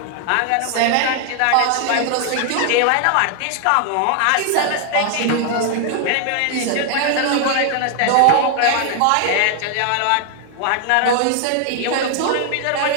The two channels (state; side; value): different; both; correlation 0.00